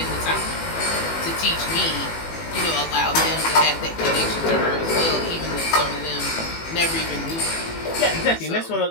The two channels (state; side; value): late; right; 18 ms